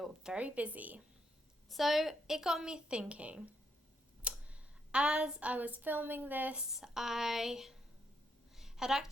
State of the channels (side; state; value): both; normal; correlation 0.77